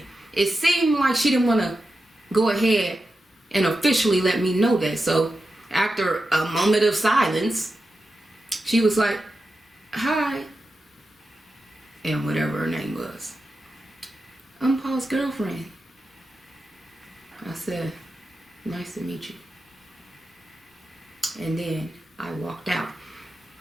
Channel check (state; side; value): normal; both; correlation 0.90